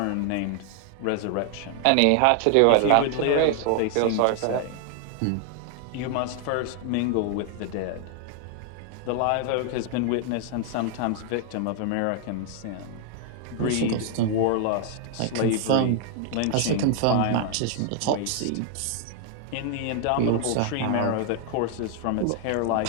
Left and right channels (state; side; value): different; both; correlation 0.00